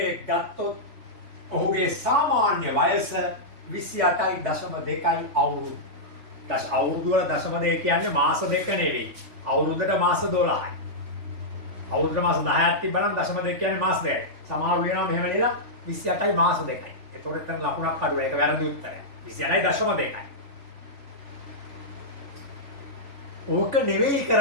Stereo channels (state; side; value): late; left; 3.5 ms